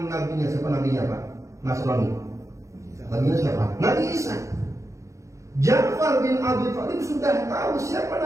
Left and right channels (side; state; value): left; late; 0.15 ms